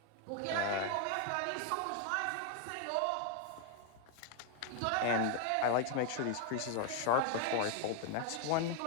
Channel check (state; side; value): different; both; correlation 0.00